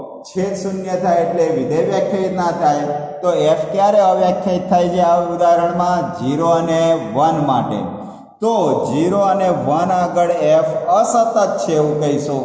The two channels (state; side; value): identical; both; correlation 1.00